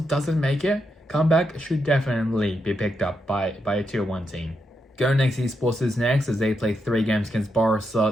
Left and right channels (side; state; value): both; normal; correlation 0.83